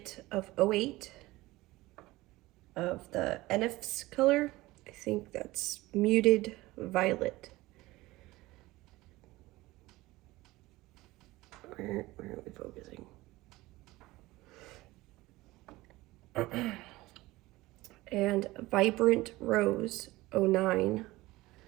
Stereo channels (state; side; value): quieter; left; 19.2 dB